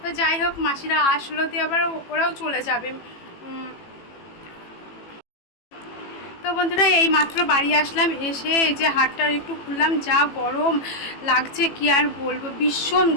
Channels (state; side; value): late; right; 18 ms